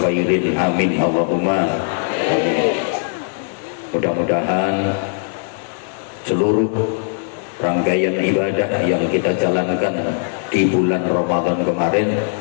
amin Allahumma amin. Mudah-mudahan seluruh rangkaian ibadah yang kita jalankan di bulan Ramadan kemarin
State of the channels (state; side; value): silent; right; 63 dB below the other